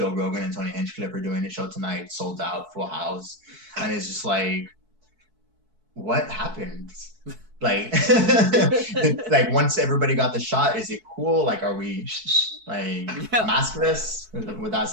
Rogan and Tony Hinchcliffe are doing a show tonight, sold out, full house. And it's just like, what happened? Like, like once everybody got the shot, is it cool? Like, are we like maskless? That's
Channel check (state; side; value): late; left; 4.6 ms